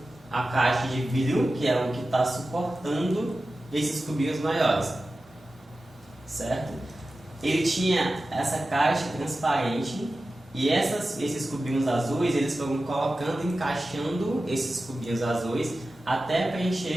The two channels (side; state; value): both; normal; correlation 0.94